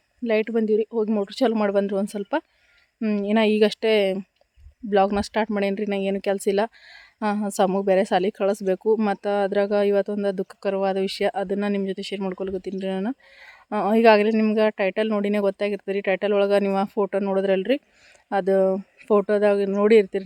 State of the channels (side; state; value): both; identical; correlation 1.00